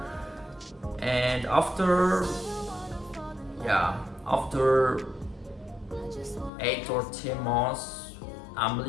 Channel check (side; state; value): right; drops out; at 6.5 s